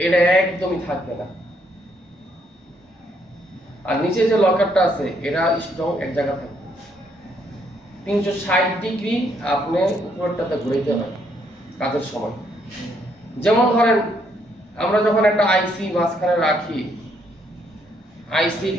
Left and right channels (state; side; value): normal; both; correlation 0.71